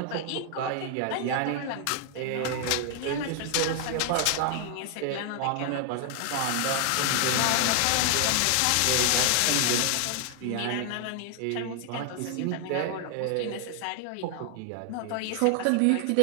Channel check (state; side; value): different; both; correlation 0.00